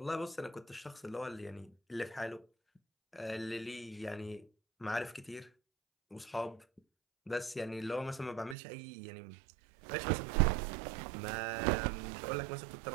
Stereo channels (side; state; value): left; drops out; at 8.6 s